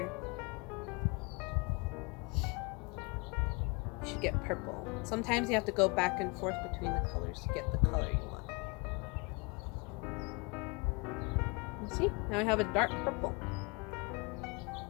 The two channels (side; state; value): right; quieter; 29.7 dB